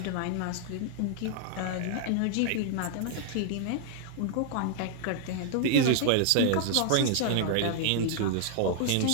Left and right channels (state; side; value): different; both; correlation -0.01